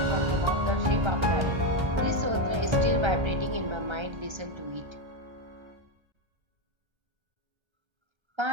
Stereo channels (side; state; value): left; late; 1.3 ms